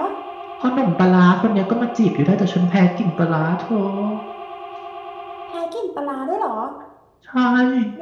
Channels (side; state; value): both; identical; correlation 1.00